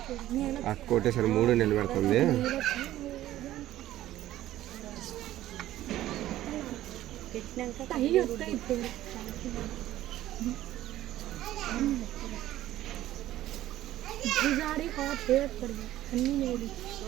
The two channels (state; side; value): quieter; left; 14.1 dB